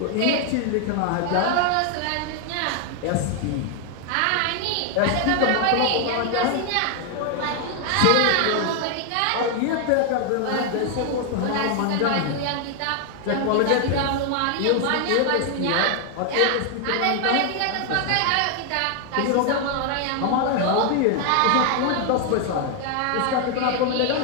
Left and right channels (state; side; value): different; both; correlation 0.00